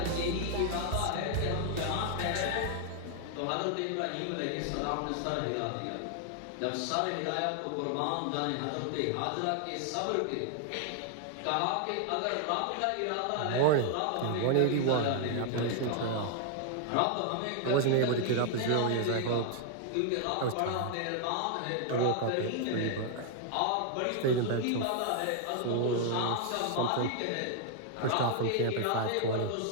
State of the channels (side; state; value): both; different; correlation 0.00